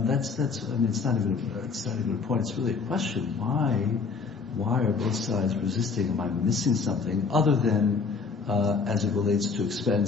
mean, it's not even a point. It's really a question. Why are both sides resisting? Am I missing something other than as it relates to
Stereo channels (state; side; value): quieter; right; 5.1 dB